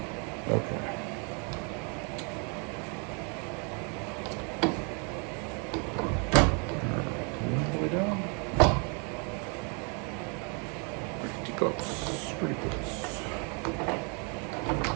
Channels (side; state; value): left; quieter; 35.9 dB